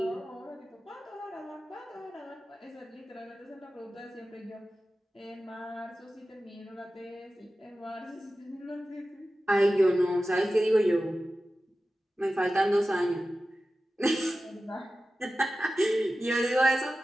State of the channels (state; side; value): normal; both; correlation 0.94